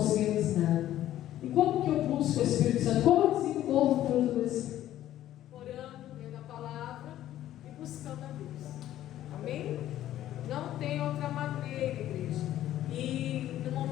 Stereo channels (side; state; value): right; quieter; 12.9 dB